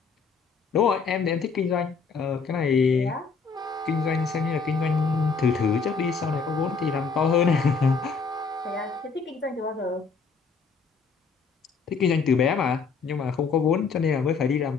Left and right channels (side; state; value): right; quieter; 5.2 dB